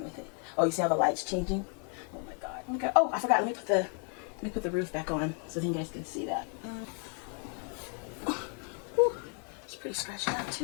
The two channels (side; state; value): right; quieter; 38.6 dB